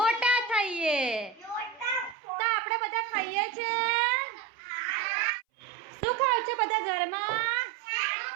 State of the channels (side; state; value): left; drops out; at 2.1 s